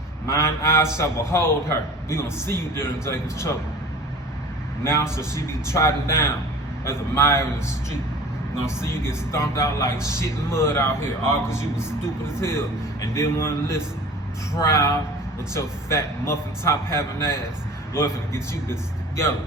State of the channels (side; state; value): both; normal; correlation 0.41